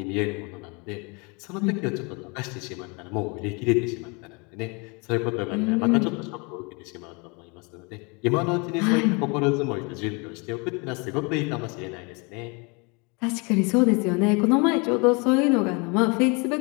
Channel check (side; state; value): right; quieter; 30.6 dB